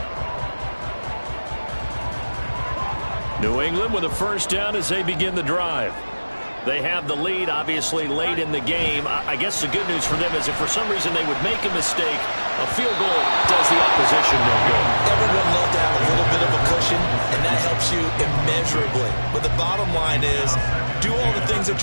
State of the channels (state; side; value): inverted; both; correlation -1.00